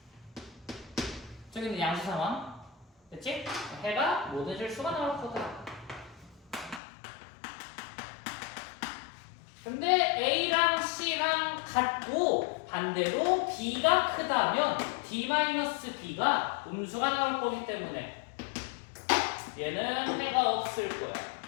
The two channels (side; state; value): right; drops out; at 6.8 s